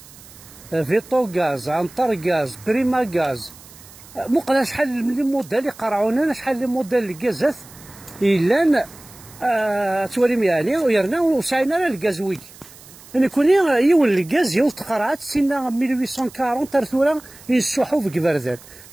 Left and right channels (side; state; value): right; noise; hiss, 21 dB below the sound